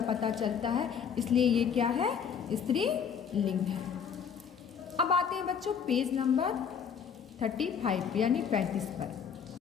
पता चलता है, इसलिए ये क्या है, स्त्री लिंग है। अब आते हैं बच्चों पेज नंबर 35 यानी 35 पर।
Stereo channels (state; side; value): quieter; right; 7.2 dB